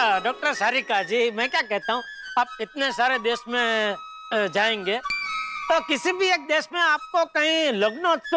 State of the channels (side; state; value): both; identical; correlation 1.00